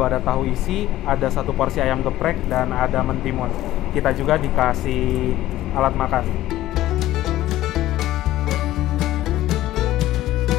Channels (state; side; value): quieter; right; 14.7 dB